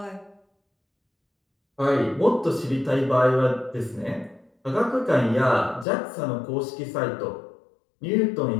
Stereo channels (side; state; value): right; drops out; at 5.9 s